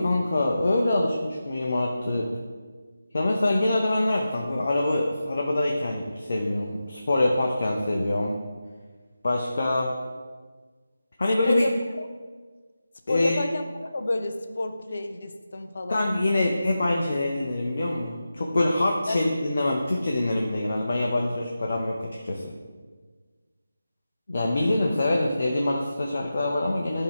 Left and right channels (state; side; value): inverted; both; correlation -0.92